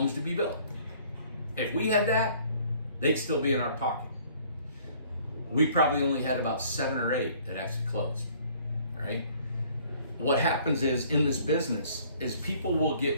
to be built. If we had that, they'd still be in our pocket. We probably only had about 7 or 8 that actually closed, all right? What happens is, in this business, is people will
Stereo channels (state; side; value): inverted; both; correlation -0.57